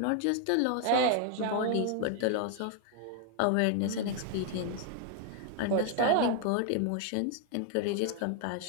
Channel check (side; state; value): both; different; correlation 0.00